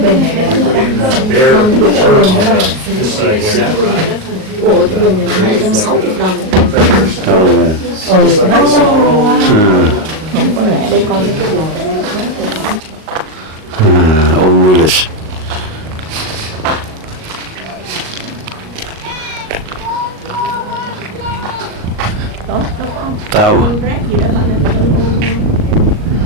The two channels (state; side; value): late; left; 38 ms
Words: này đẹp. Put in bear fur on this side here. Ôi cái bình này 260 đồng. Oh, yeah. Mắc quá. Không có rẻ đây coi mấy cái đồ. Old village. Đó, nó có Tao. con rác gì đó bạn ơi.